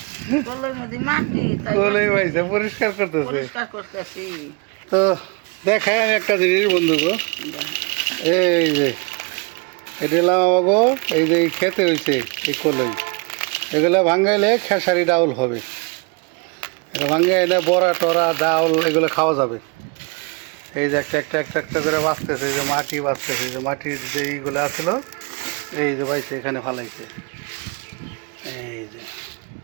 কলাই মধ্যে মাটি তাই কলাই ভাইসা পরিষ্কার করতেছে। পরিষ্কার করতেছি। তো দেখাই আমি একটা জিনিস বন্ধুগো, এই যে এটা এলাম আমাগো, এই যে খেতে হয়েছে এই কলাই, এগুলো ভাঙ্গাইলে খেসারি ডাউল হবে। এটা ভাঙ্গাইলে বড়া টরা ডাউল এগুলো খাওয়া যাবে। এই যে একটা একটা একটা একটা করে বাঁচতেছে, এই যে মাটি বাঁচতেছে, এই যে মাটির যে এইগুলো আছিল, এই যে বাইছে এখানে ফালাইছে। এই যে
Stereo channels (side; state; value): left; quieter; 32.0 dB